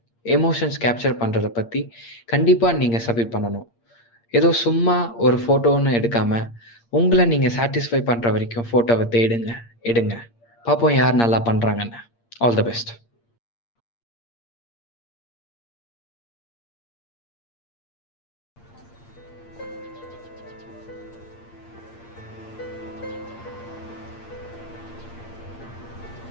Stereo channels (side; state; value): right; late; 8.6 ms